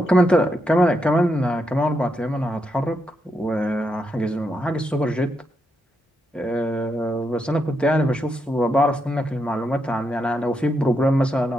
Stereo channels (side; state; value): both; normal; correlation 0.82